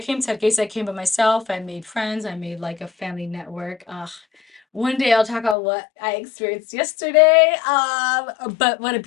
to Hargeisa, I came by myself. I made friends. I made like a family network. One day I'll talk about what I experienced yesterday. But what a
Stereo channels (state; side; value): drops out; right; at 5.6 s